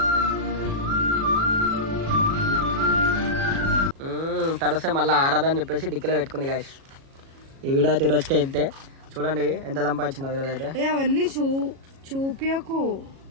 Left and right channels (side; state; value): left; late; 37 ms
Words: తడిస్తే మళ్ళీ ఆరాదని చెప్పేసి డిక్కీలో పెట్టుకుంది గాయస్. ఈ వీడియో అయితే ఈ రోజుకే ఇంతే. చూడండి ఎంత సంపాదించిందో ఈరోజు అయితే. అవన్నీ చూపియకు.